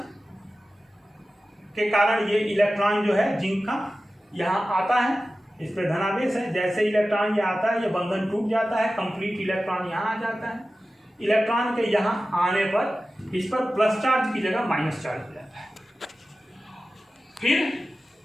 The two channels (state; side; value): normal; both; correlation 0.95